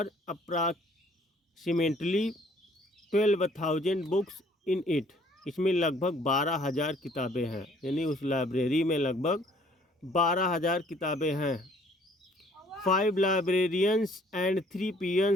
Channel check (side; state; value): both; normal; correlation 0.59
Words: approximately 12,000 books in it, इसमें लगभग 12,000 किताबें हैं। यानी उस लाइब्रेरी में लगभग 12,000 किताबें हैं। 5 librarians and 3